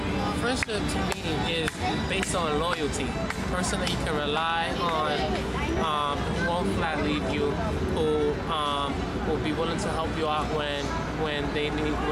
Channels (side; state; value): both; identical; correlation 1.00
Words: Friendship to me is based on loyalty. A person that you can rely on, who won't flat leave you, who will be willing to help you out when